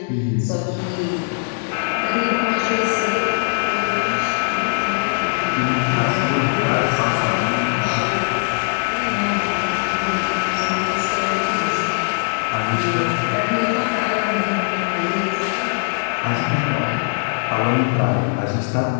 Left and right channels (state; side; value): silent; right; 65 dB below the other